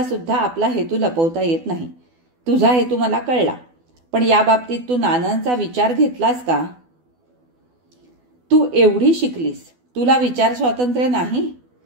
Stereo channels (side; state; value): left; late; 12 ms